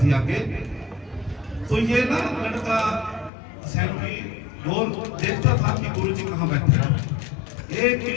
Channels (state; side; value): drops out; right; at 3.3 s